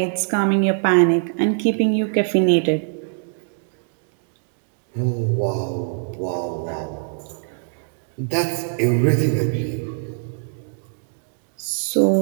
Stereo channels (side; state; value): left; silent; digital silence